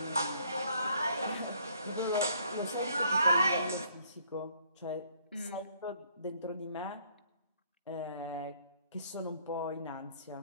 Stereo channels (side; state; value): both; inverted; correlation -0.64